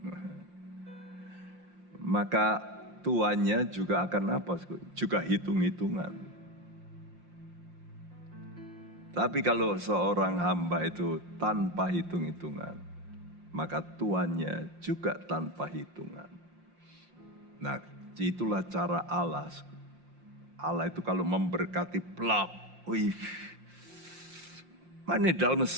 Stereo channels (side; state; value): left; late; 5.7 ms